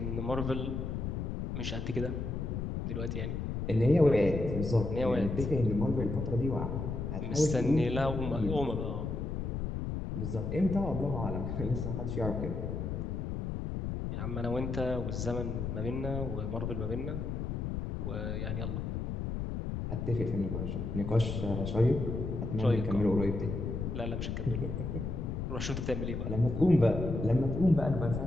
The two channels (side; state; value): left; noise; rumble, 3 dB below the sound